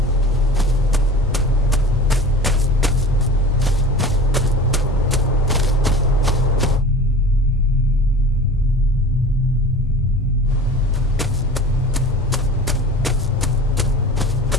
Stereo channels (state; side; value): normal; both; correlation 0.37